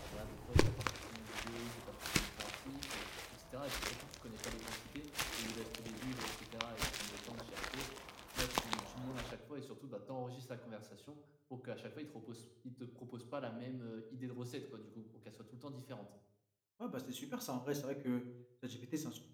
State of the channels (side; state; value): both; identical; correlation 1.00